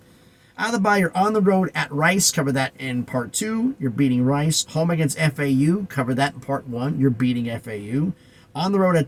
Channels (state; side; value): identical; both; correlation 1.00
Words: Out of the bye, you're on the road at Rice. Cover that in part 2. You're beating Rice. Home against FAU. Cover that in part 1. You're beating FAU. On the road at